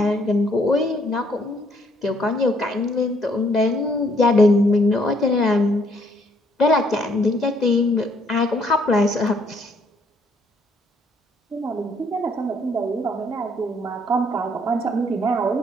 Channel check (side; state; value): both; normal; correlation 0.67